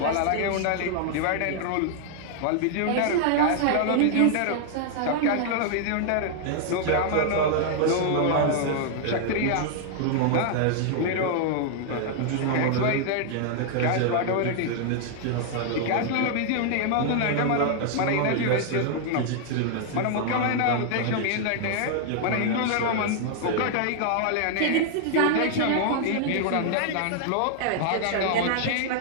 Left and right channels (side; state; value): both; different; correlation -0.01